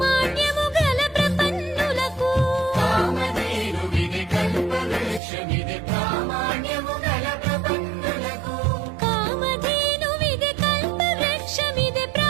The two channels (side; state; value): left; drops out; at 5.2 s